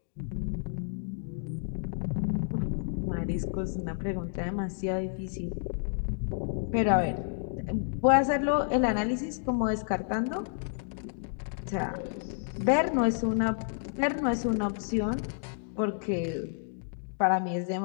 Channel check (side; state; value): right; silent; digital silence